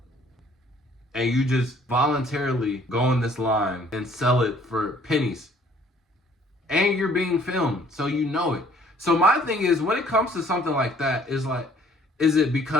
And you just voluntarily go in this line and sell it for pennies. And you're being filmed, so you know it. So my thing is, when it comes to something like that, is it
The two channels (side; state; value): both; normal; correlation 0.58